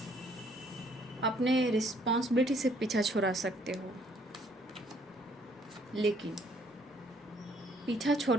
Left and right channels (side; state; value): both; normal; correlation 0.64